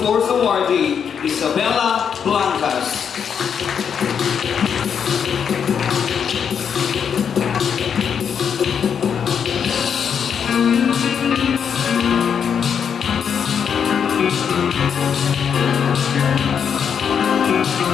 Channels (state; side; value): quieter; right; 7.4 dB